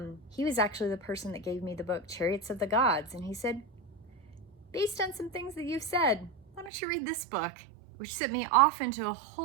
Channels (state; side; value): drops out; left; at 6.7 s